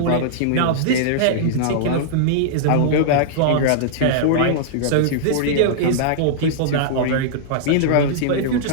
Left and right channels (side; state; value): both; different; correlation -0.02